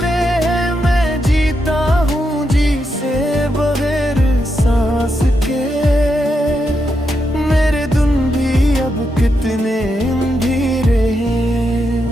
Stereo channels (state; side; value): normal; both; correlation 0.83